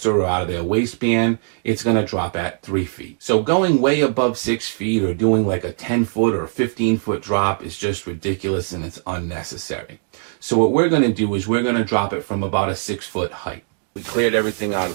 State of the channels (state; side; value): silent; left; 65 dB below the other